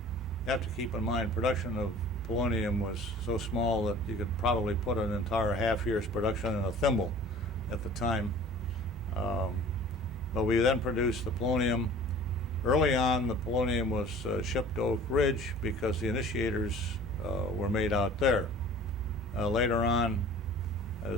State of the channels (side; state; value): both; normal; correlation 0.45